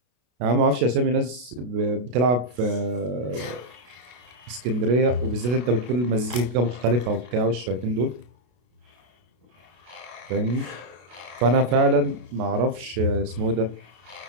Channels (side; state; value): left; late; 32 ms